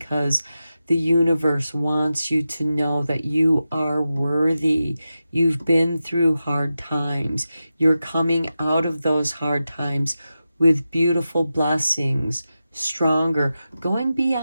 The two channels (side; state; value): both; inverted; correlation -0.92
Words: the universe wants you to know that you are worthy. You've been through hard times. You're coming out of those hard times with beautiful blessings, stronger, going